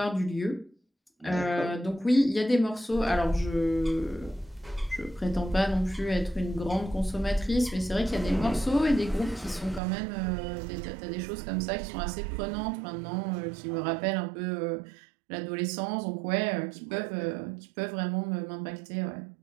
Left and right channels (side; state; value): left; drops out; at 9.8 s